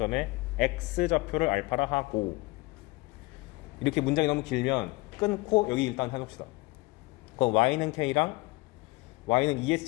x좌표를 알파라 하고 이렇게 문장이 너무 길면 끊고 여기 일단 해봅시다. 그럼 y는 K랑 y는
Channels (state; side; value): quieter; right; 23.0 dB